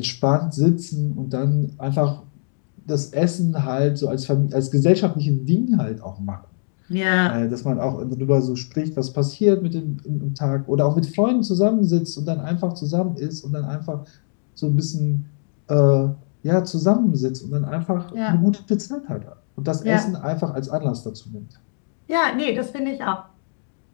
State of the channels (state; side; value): silent; right; digital silence